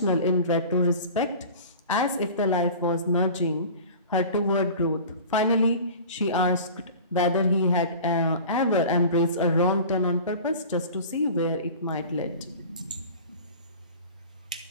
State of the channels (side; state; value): both; inverted; correlation -0.39